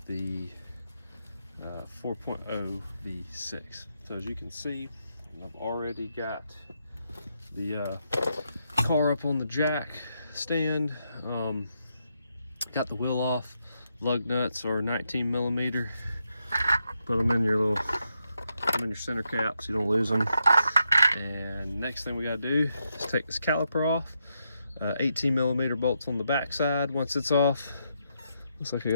the 4.0 V6. So as you can see, I've already got the car up on the jack stand. Got the wheel off. Lug nuts are 19 millimeter. Put them in your center cap so you don't lose them. And next thing we gotta do is take this caliper off. 18 millimeter bolts on the back side. Once it's off, looks like I got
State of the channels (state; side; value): inverted; both; correlation -0.82